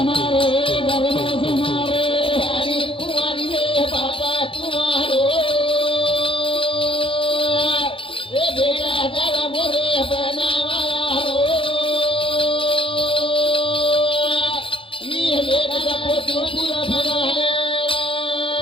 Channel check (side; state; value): right; late; 0.26 ms